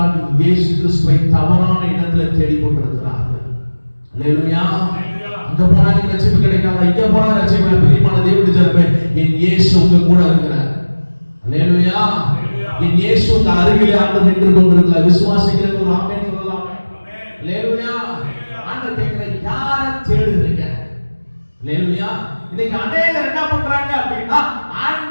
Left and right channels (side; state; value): both; inverted; correlation -1.00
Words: இயேசு கிறிஸ்துவை தவறான இடத்துல தேடிக் கொண்டிருக்கிறார்கள். அல்லேலூயா. அங்க போனா ரட்சிப்பு கிடைக்காதா, இங்க போனா ரட்சிப்பு. பிரியமான தேவனுடைய ஜனமே, என் இயேசு உங்க கூட இருக்கிறார். அல்லேலூயா. என் இயேசு உங்க அருகிலே ஆண்டு நின்று கொண்டிருக்கிறார். விசுவாசிக்கிற ஒரு ஆமென் சொல்லலாமே. அல்லேலூயா. ஆண்டவர் கேட்கிற, யாரை தேடுறீங்க? அல்லேலூயா. இன்னைக்கு அநேகர் என்ன பண்றாங்க அப்படின்னா,